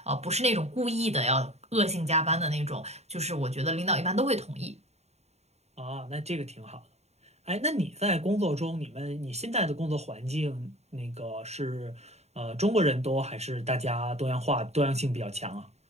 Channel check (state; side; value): late; left; 0.31 ms